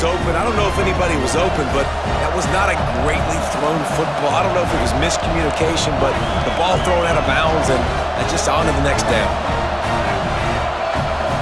open. I don't know if anybody was open, but that was not a greatly thrown football. I don't know if it was miscommunication, but the ball thrown out of bounds and just on to the next down.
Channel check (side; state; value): both; identical; correlation 1.00